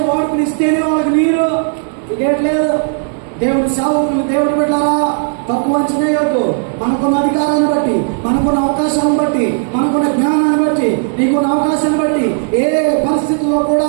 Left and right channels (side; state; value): left; silent; 63 dB below the other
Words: వాడుకుని ఇస్తేనే వాళ్ళకి నీరు. ఇదేట్లేదు. దేవుడి సేవకులు, దేవుడు పెట్టారా, తక్కువ అంచనా వద్దు. మనకున్న అధికారాన్ని బట్టి, మనకున్న అవకాశాలను బట్టి, మనకున్న జ్ఞానాన్ని బట్టి, నీకున్న అవకాశాన్ని బట్టి ఏ పరిస్థితుల్లో